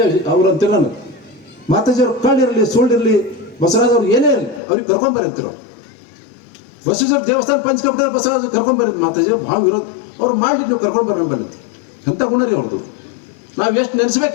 ಅವ್ರು ಅಂತಿಲ್ಲ, ನಾನು ಮಾತಾಜಿ ಅವ್ರು ಕಳ್ಳಿರಲಿ ಸುಳ್ಳಿರಲಿ ಬಸವರಾಜ್ ಅವ್ರು ಏನೇ ಇರಲಿ ಅವ್ರಿಗೆ ಕರ್ಕೊಂಬರಿ ಅಂತಿರೋ. ಬಸವೇಶ್ವರ ದೇವಸ್ಥಾನ ಪಂಚಕಪಟ ಬಸವರಾಜ್ ಕರ್ಕೊಂಬರಿ, ಮಾತಾಜಿ ಭಾಳ ವಿರೋಧ ಅವ್ರು ಮಾಡಿ ನೀವು ಕರ್ಕೊಂಡ್ಬರ್ರಿ ಬಂದಿತ್ತು. ಎಂಥ ಗುಣ ರೀ ಅವ್ರದ್ದು. ನಾವು ಎಷ್ಟು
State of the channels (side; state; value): right; drops out; at 4.6 s